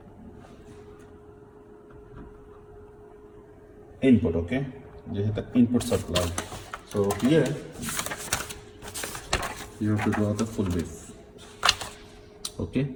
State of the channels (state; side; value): identical; both; correlation 1.00